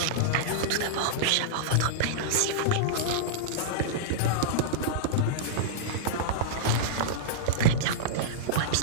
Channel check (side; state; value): both; different; correlation -0.03